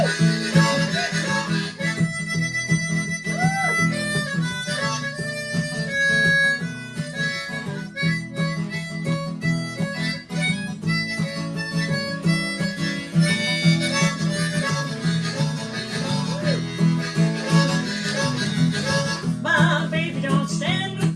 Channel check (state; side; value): identical; both; correlation 1.00